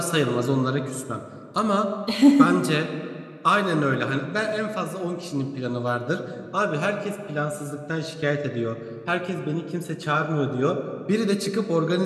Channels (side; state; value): both; identical; correlation 1.00